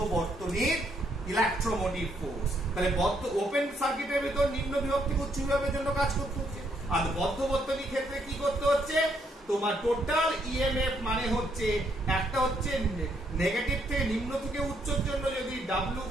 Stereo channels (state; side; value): normal; both; correlation 0.73